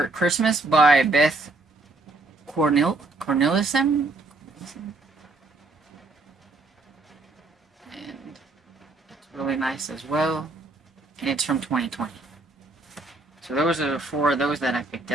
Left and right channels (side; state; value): left; quieter; 3.2 dB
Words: Christmas by Beth Cornelissen. And it's really nice as well. And it's from 2020. So those are 4 of those that I picked